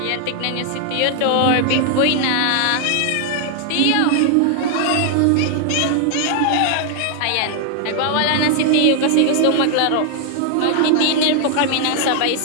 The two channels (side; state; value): both; different; correlation 0.00